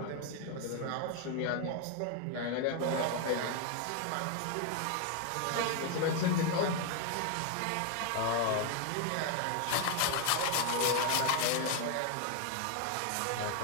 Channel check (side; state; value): both; different; correlation 0.01